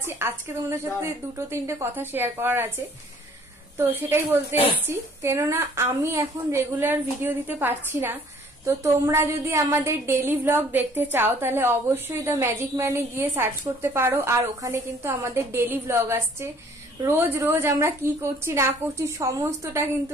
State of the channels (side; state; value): both; normal; correlation 0.57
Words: আজকে তোমাদের সাথে দুটো তিনটে কথা শেয়ার করার আছে, তো সেটাই বলতে এসেছি। কেননা আমি এখন রেগুলার ভিডিও দিতে পারছি না। তো তোমরা যদি আমাদের ডেইলি ব্লগ দেখতে চাও তাহলে অবশ্যই দ্য ম্যাজিক ম্যানে গিয়ে সার্চ করতে পারো। আর ওখানে কিন্তু আমাদের ডেইলি ব্লগ আসছে। রোজ রোজ আমরা কি করছি না করছি সমস্তটা